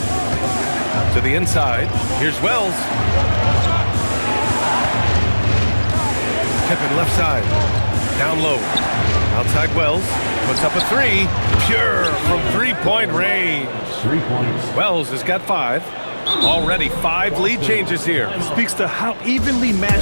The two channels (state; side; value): inverted; both; correlation -1.00